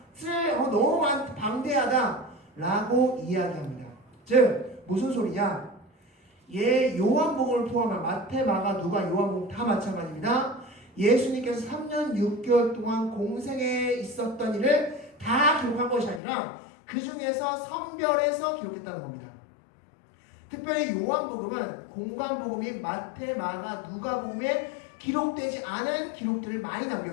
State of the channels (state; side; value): drops out; right; at 16.2 s